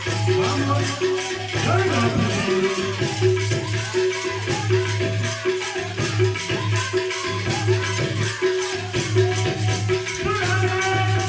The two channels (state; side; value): identical; both; correlation 1.00